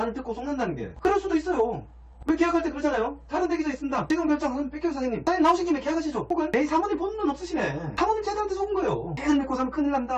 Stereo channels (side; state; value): both; identical; correlation 1.00